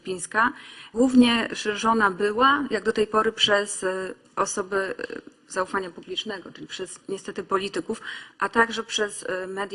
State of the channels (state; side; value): identical; both; correlation 1.00